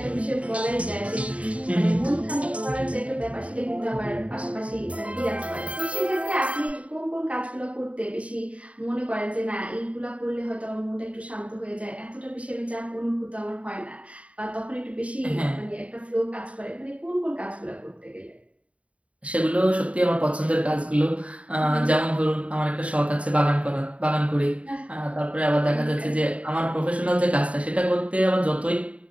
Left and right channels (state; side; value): late; left; 0.065 ms